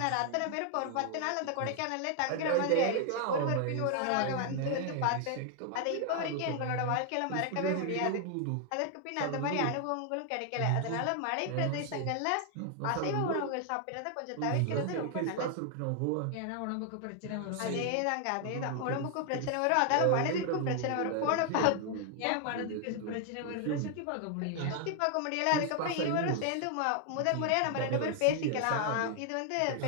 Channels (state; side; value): different; both; correlation 0.00